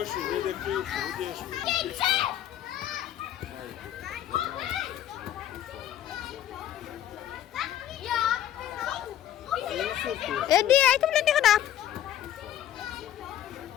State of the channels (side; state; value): right; quieter; 11.7 dB